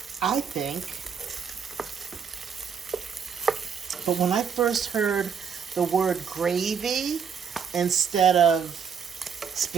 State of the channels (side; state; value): left; quieter; 6.9 dB